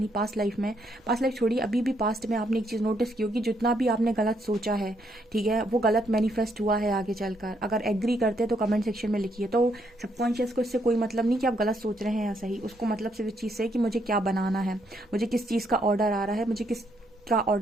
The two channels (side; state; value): both; normal; correlation 0.74